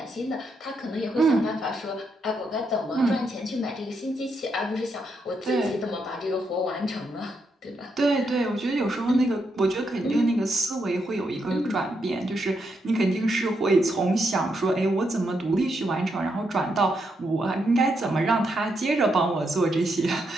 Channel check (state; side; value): normal; both; correlation 0.80